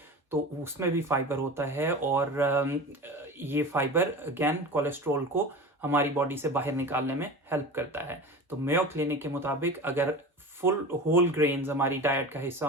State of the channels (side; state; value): both; normal; correlation 0.32